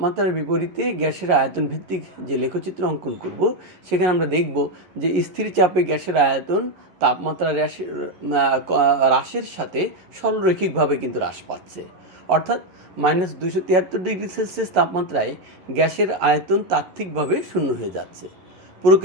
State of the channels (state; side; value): late; left; 11 ms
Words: বিপরীতে গ্যাসের আয়তন ভিত্তিক যে লেখচিত্র অঙ্কন করব সেখানে আমরা দেখব যে স্থির চাপে গ্যাসের আয়তন তাপমাত্রা হ্রাসের সাথে সরলরৈখিকভাবে কিন্তু হ্রাস পাচ্ছে। অর্থাৎ মাইনাস 273 ডিগ্রি সেলসিয়াস তাপমাত্রায় গ্যাসের আয়তন তাত্ত্বিকভাবে শূন্য হয়ে যাচ্ছে।